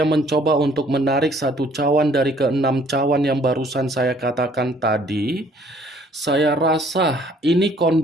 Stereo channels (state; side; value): normal; both; correlation 0.60